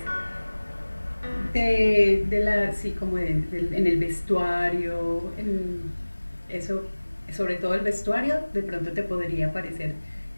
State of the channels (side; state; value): both; inverted; correlation -1.00